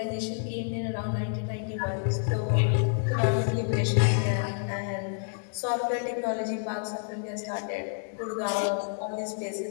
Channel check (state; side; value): silent; right; digital silence